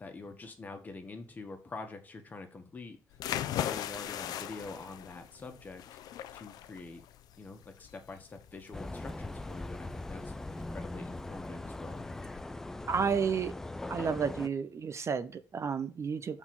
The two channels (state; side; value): normal; both; correlation 0.61